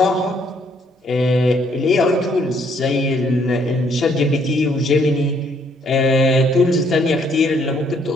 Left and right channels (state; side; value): normal; both; correlation 0.67